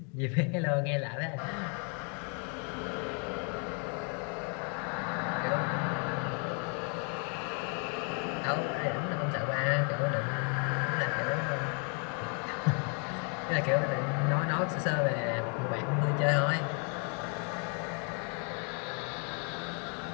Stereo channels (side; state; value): right; quieter; 38.6 dB